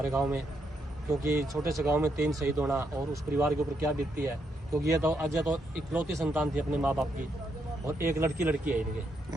गांव में, क्योंकि छोटे से गांव में 3 शहीद होना और उस परिवार के ऊपर क्या बीतती है। क्योंकि ये तो अजय तो इकलौती संतान थी अपने माँ बाप की, और एक लड़की है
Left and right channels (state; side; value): normal; both; correlation 0.78